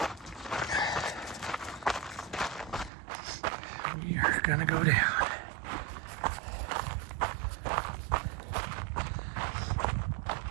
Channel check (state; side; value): drops out; left; at 2.9 s